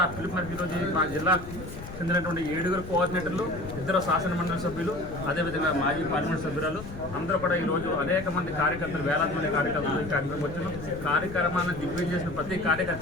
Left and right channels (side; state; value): left; noise; rumble, 12 dB below the sound